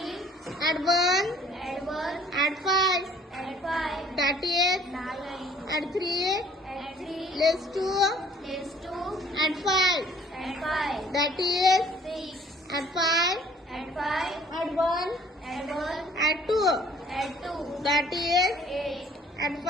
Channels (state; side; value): normal; both; correlation 0.57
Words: Add 1. Add 5. That is. Add 3. Less 2. Add 5. That is. Add 5. Add 1. Add 2. That is. Add